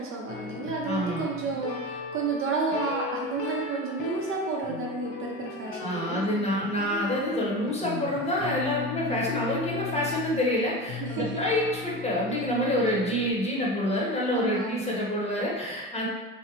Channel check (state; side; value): normal; both; correlation 0.27